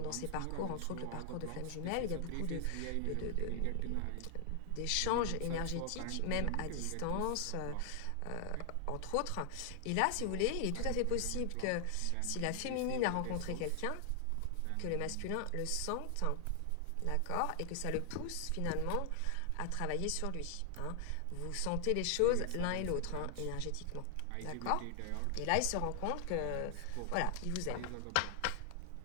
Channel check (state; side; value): different; both; correlation 0.00